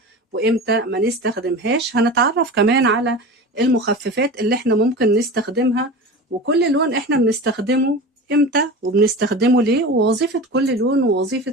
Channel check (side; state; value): both; normal; correlation 0.31